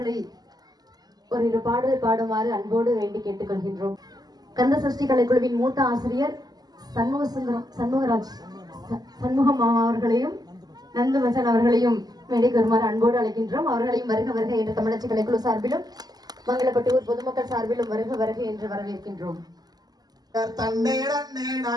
ஒரு பாடல் பாடுமாறு அன்போடு வேண்டி கேட்டுக்கொள்கின்றோம். கந்த சஷ்டி கலைக்குழுவின் மூத்த ஆசிரியர் சண்முகம் அவர்களையும் நந்துமசன் அவர்களையும் மேடைக்கு வருமாறு அன்போடு அழைக்கின்றோம். அவர்களையும் வருக வருக என்று தமிழச்சி கலைக்குழு சார்பிலும் மங்களப்பட்டியூர் பொதுமக்கள் சார்பிலும் வருக வருக என்று வரவேற்கின்றோம்.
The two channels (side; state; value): left; late; 0.19 ms